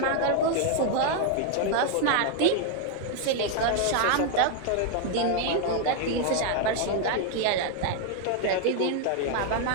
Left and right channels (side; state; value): both; different; correlation 0.01